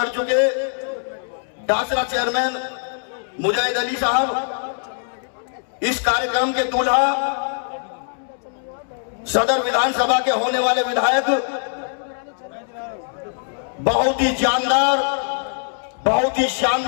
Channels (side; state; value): right; silent; digital silence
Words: चुके डासरा चेयरमैन मुजाहिद अली साहब, इस कार्यक्रम के दूल्हा सदर विधानसभा के होने वाले विधायक, बहुत ही जानदार, बहुत ही